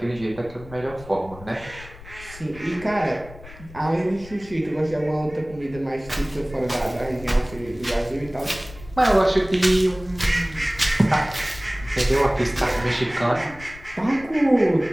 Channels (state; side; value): noise; left; rumble, 18 dB below the sound